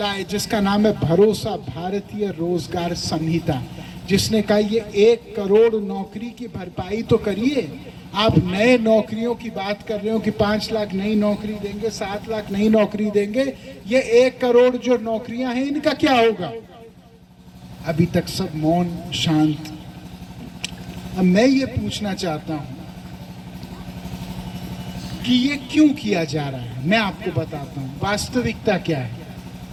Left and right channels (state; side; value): identical; both; correlation 1.00